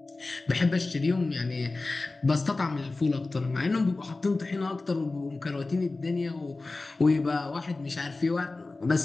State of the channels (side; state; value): right; quieter; 3.4 dB